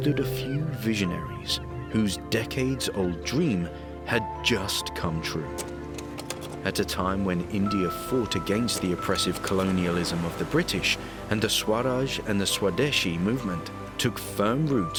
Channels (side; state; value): both; identical; correlation 1.00